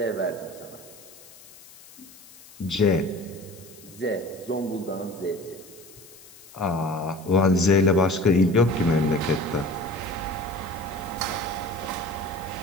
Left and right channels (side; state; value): left; noise; hiss, 21 dB below the sound